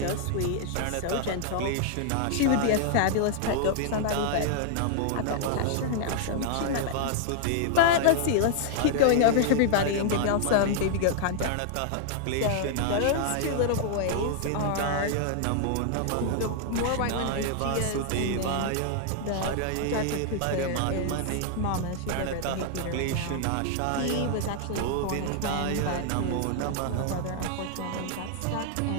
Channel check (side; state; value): both; different; correlation 0.00